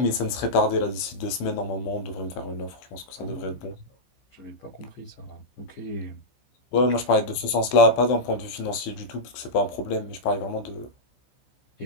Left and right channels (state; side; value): late; right; 15 ms